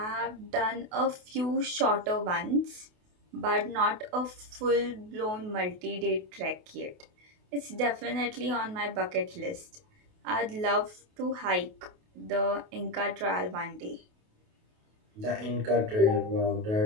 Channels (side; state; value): left; late; 28 ms